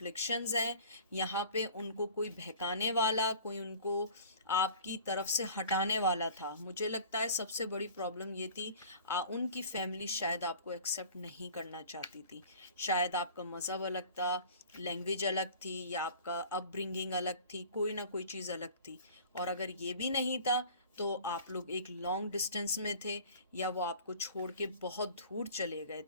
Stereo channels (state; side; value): inverted; both; correlation -0.45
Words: हैं, यहाँ पे उनको कोई बहकाने वाला, कोई उनको आपकी तरफ से हटाने वाला था। मुझे लगता है सबसे बड़ी प्रॉब्लम ये थी, उनकी फैमिली शायद आपको एक्सेप्ट नहीं करना चाहती थी। शायद आपका मज़हब अलग था, लैंग्वेज अलग थी, या आपका अपब्रिंगिंग अलग थी, कोई ना कोई चीज़ अलग थी। और अगर ये भी नहीं था तो आप लोग एक लॉन्ग डिस्टेंस में थे, या वो आपको छोड़ के बहुत दूर चले गए